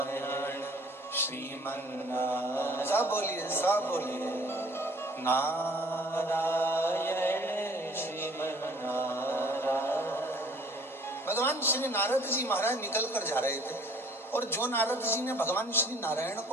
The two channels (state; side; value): normal; both; correlation 0.54